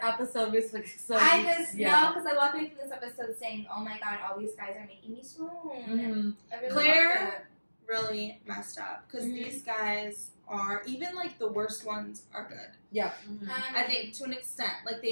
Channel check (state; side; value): inverted; both; correlation -1.00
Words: episode. We're just like, so I just yeah. know because I walked away from this episode saying, "Oh my god, all these guys are making me swoon." I really Claire- loved it. Really messed up because Mhm. these guys are even like the worst ones are good. I think to an extent, like